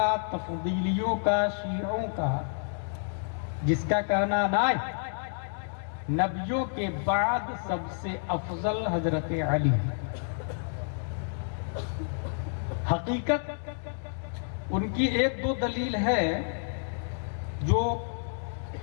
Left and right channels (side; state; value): right; silent; digital silence